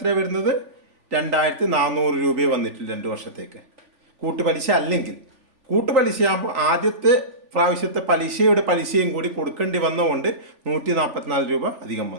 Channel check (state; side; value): late; left; 3.5 ms